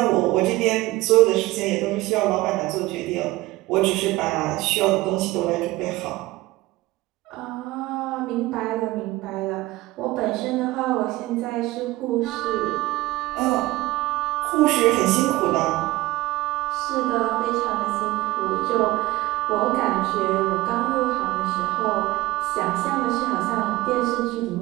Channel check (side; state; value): left; quieter; 18.5 dB